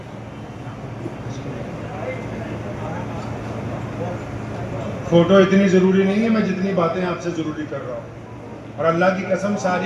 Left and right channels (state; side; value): identical; both; correlation 1.00